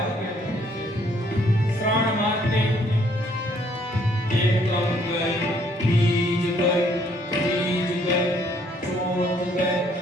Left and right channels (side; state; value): both; normal; correlation 0.65